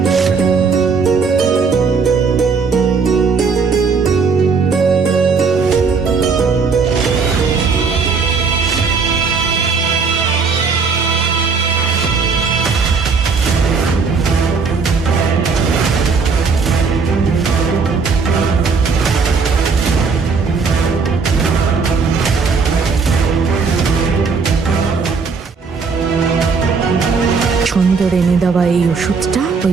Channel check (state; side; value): quieter; left; 5.1 dB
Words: ছন্দর এনে দেওয়া এই ওষুধটা